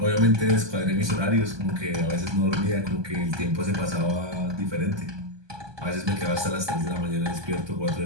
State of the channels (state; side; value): late; left; 1.2 ms